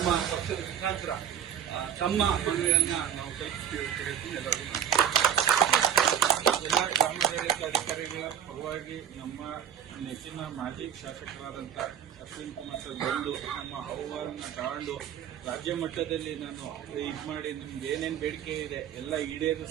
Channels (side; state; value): left; quieter; 9.4 dB